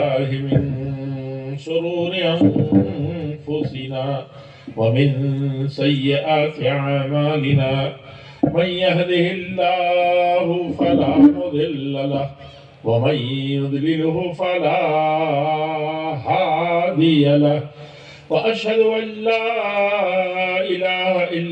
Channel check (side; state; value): both; identical; correlation 1.00